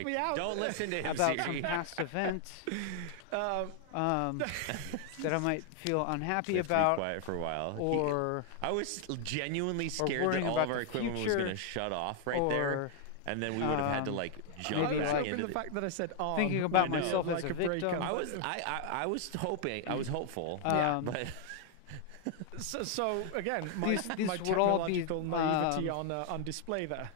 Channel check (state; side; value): different; both; correlation 0.00